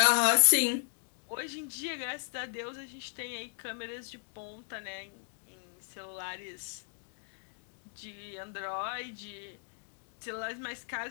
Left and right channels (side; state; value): right; silent; digital silence